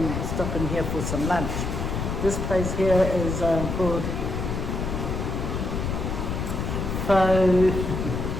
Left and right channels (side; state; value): left; noise; rumble, 2 dB below the sound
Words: stop in here for some lunch. This place here is called Faye.